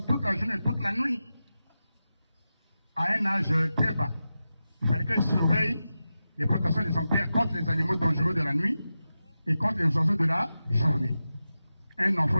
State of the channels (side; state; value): both; inverted; correlation -0.92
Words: toute la journée, toute la nuit, à un âge très bas. Il fallait qu'elle surveille les plantations de son père contre les animaux dangereux de la nuit et contre les oiseaux de la journée. Un